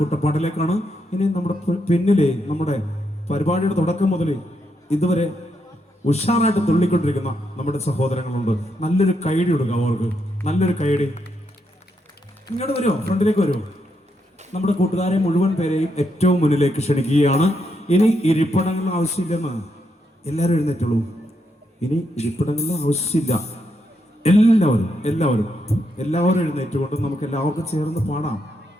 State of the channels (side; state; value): both; normal; correlation 0.80